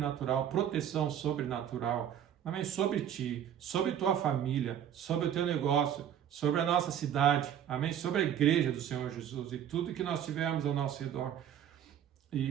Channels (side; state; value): left; quieter; 9.8 dB